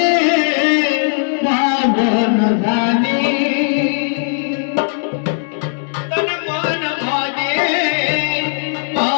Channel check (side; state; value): right; silent; digital silence